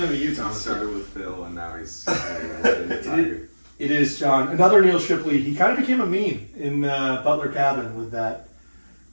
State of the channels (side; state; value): both; inverted; correlation -1.00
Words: to be you, He Thomas. started with Phil, and now he's the Tiger. It is John. Another Neil Shipley. He kind of became a meme in Butler Cabin with that.